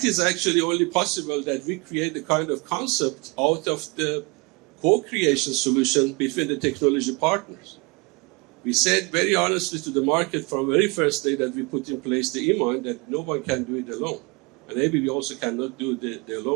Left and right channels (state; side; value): quieter; left; 28.6 dB